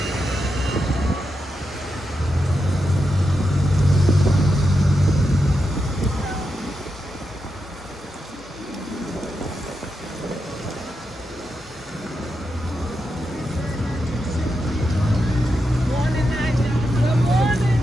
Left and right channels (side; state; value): both; normal; correlation 0.86